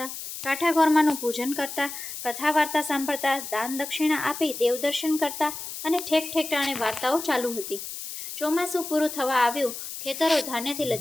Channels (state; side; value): noise; left; hiss, 9 dB below the sound